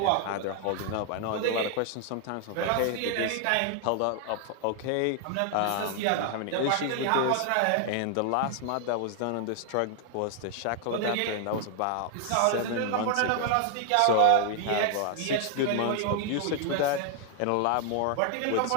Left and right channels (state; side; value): different; both; correlation 0.00